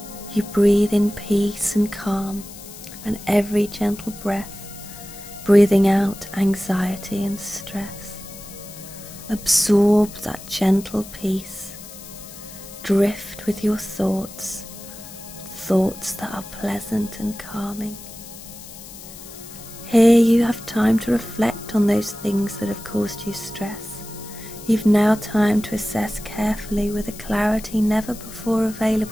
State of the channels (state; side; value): noise; left; hiss, 16 dB below the sound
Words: You breathe in peace and calm, and every gentle breath, breathing out anxiety and stress. Absorb that gentle peace. Drift with your thoughts that are pleasant and calming. Here you have time to reflect on those things that have caused you stress. You've now time to assess carefully, with a clarity never before